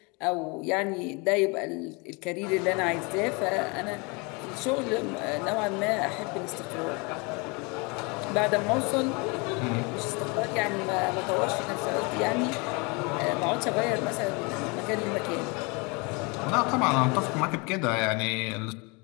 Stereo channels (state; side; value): quieter; right; 29.6 dB